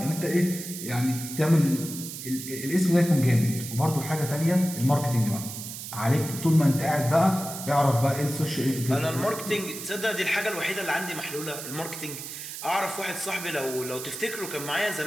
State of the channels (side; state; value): right; noise; hiss, 9 dB below the sound